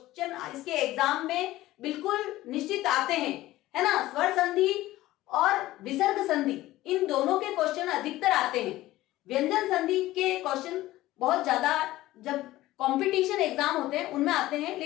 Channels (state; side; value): quieter; right; 16.4 dB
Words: इसके एग्जाम में बिल्कुल निश्चित आते हैं, है ना, स्वर संधि और विसर्ग संधि, इन दोनों के क्वेश्चन अधिकतर आते हैं। व्यंजन संधि के क्वेश्चन बहुत ज्यादा जब कंपटीशन एग्जाम होते हैं उनमें आते हैं,